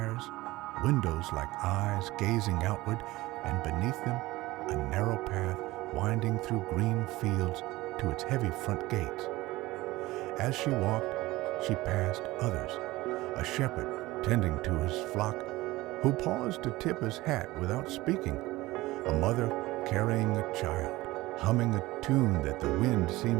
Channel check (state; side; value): quieter; left; 19.1 dB